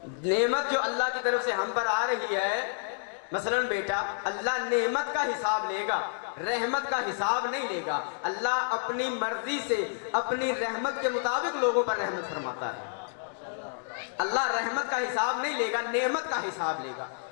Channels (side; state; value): right; silent; digital silence